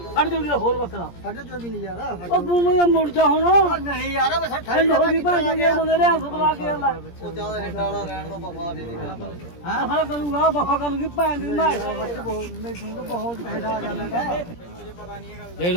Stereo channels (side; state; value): right; late; 17 ms